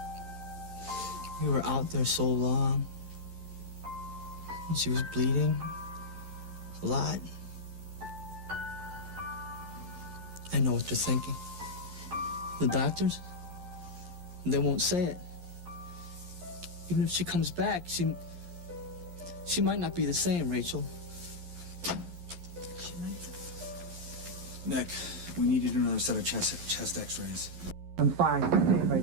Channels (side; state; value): left; late; 11 ms